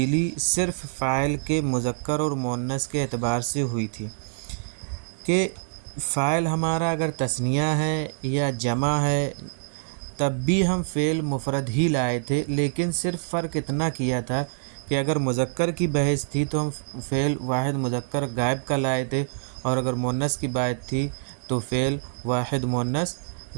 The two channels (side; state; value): left; silent; digital silence